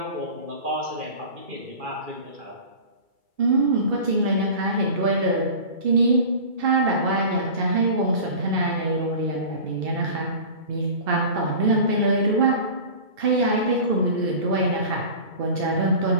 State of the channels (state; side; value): late; left; 2.3 ms